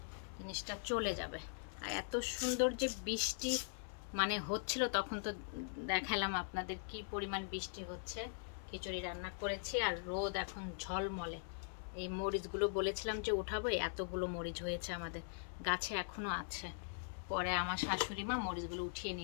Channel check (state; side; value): silent; right; 50 dB below the other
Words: জিনিসটা চলে যাবে। আর এত সুন্দর যে বৃষ্টি মানে হচ্ছিল, তখন তো দেখালাম আপনাদের কি পরিমাণ বৃষ্টি হচ্ছে। খিচুড়ি রান্না করেছি আর রোদ এখন ঝলমলে। এই মরিচগুলো বলেছিলাম যে উঠাবো, এতগুলো মরিচ হয়েছে আমাদের গাছে, এখনো আছে। পরে আমার শাশুড়ি মা মরিচগুলো উঠিয়ে